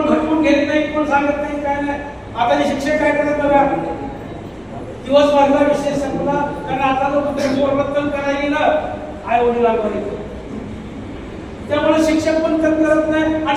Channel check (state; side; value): identical; both; correlation 1.00